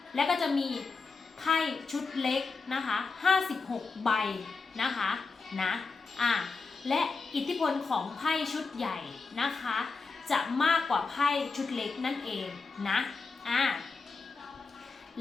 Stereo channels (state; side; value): quieter; right; 4.3 dB